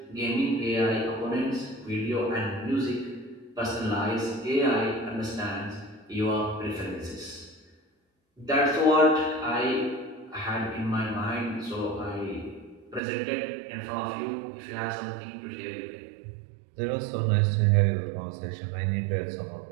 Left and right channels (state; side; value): drops out; left; at 13.0 s